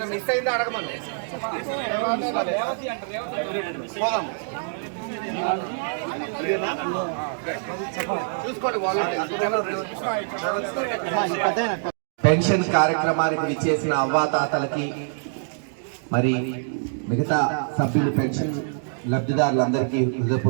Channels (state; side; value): silent; left; digital silence